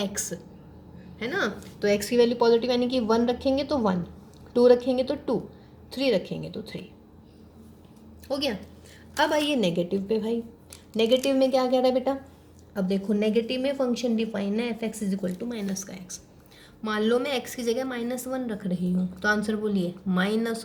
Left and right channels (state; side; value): identical; both; correlation 1.00